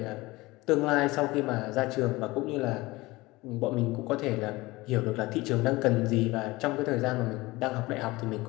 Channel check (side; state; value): right; quieter; 20.9 dB